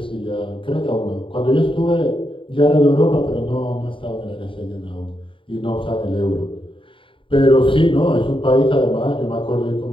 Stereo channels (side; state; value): right; late; 0.25 ms